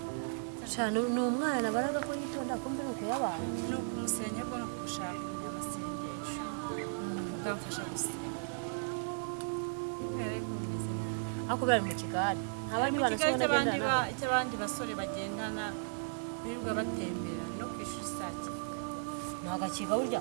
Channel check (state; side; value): silent; left; digital silence